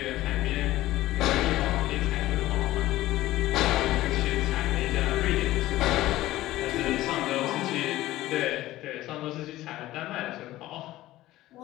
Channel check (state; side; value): quieter; right; 16.0 dB